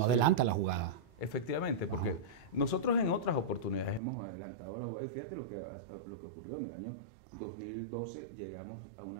adelanta la jugada. Efectivamente, porque nosotros en otras oportunidades hemos adelantado la jugada y fíjate lo que ocurrió en el año 2012, llegamos a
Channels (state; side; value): drops out; left; at 4.0 s